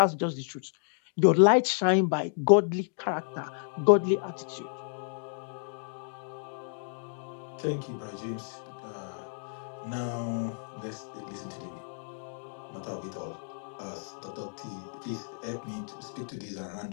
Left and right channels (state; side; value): silent; right; digital silence